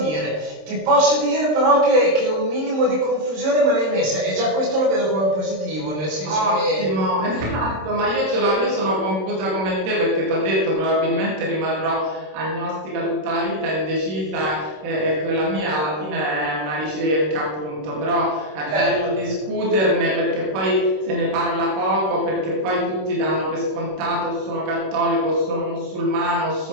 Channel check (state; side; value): late; left; 26 ms